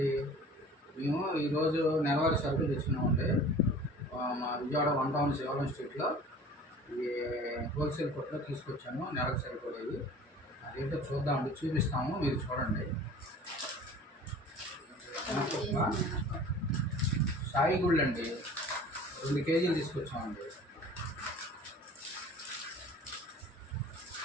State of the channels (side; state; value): both; normal; correlation 0.44